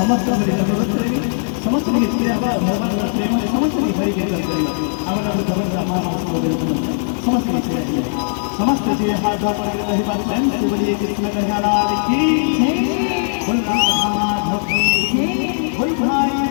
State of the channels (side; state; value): right; silent; 62 dB below the other